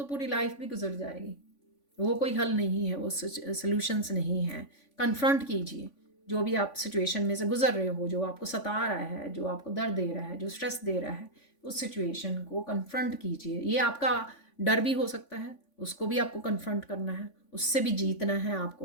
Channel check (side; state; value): right; late; 3.5 ms